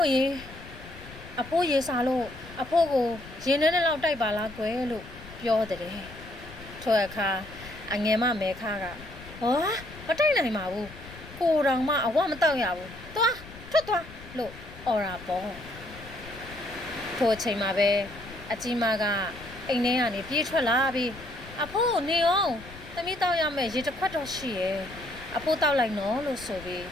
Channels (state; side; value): noise; left; rumble, 16 dB below the sound